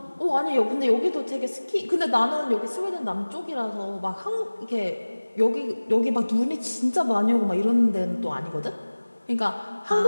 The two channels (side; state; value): both; inverted; correlation -1.00